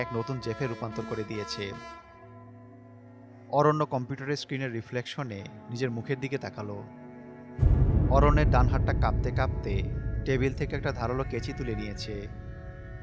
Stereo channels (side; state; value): both; identical; correlation 1.00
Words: এক নতুন জেফে রূপান্তর করে দিয়েছে। অরণ্য কম্পিউটারের স্ক্রিনের রিফ্লেকশনে নিজের মুখের দিকে তাকালো। অরণ্যের ডান হাতটা কাঁপতে কাঁপতে টেবিল থেকে একটা ধারালো কেচি তুলে নিয়েছে।